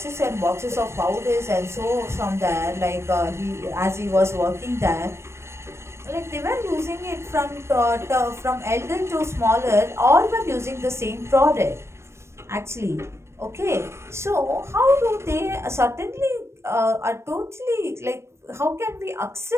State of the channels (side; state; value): left; late; 0.13 ms